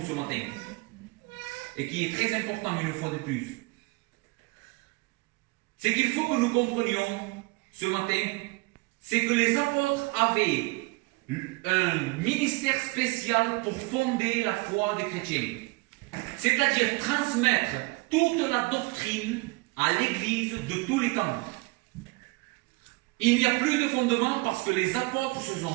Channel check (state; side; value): quieter; left; 25.5 dB